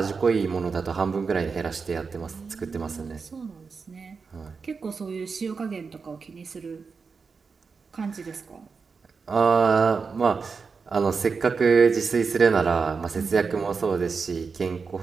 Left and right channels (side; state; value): left; quieter; 5.1 dB